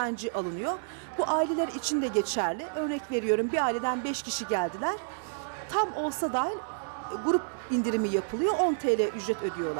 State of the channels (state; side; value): silent; left; digital silence